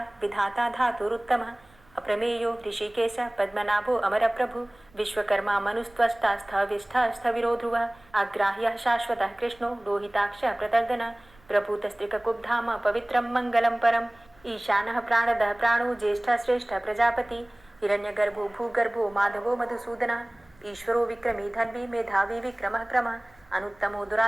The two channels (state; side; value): noise; right; rumble, 29 dB below the sound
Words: विधाता धातुरुत्तमः अप्रमेयो ऋषिकेश पद्मनाभो अमरप्रभु विश्वकर्मा मनुस्त्वष्टा स्थविष्ठः स्थविरो ध्रुवः अग्राह्यः शाश्वतः कृष्णो लोहिताक्षः प्रतर्दनः प्रभूतस्त्रिककुब्धाम पवित्रं मङ्गलं परम् ईशानः प्राणदः प्राणो ज्येष्ठः श्रेष्ठः प्रजापति हिरण्यगर्भो भूगर्भो माधवो मधुसूदनः ईश्वरो विक्रमी धन्वी मेधावी विक्रमः क्रमः अनुत्तमो